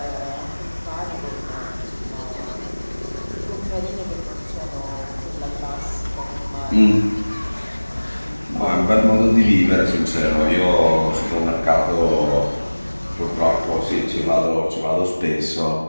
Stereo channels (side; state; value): both; inverted; correlation -1.00